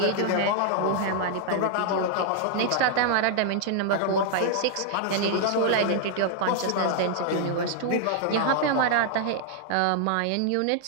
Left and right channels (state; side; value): different; both; correlation 0.00